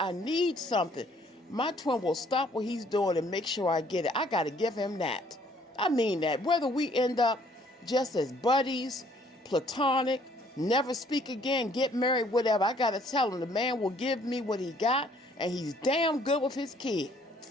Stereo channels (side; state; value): both; normal; correlation 0.61